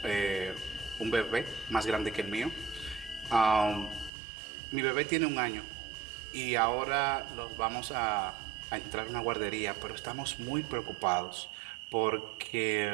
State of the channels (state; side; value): drops out; left; at 4.1 s